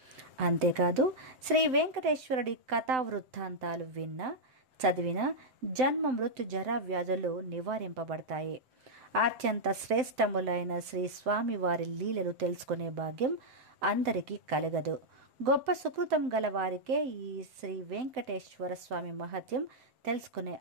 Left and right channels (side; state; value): left; late; 7.8 ms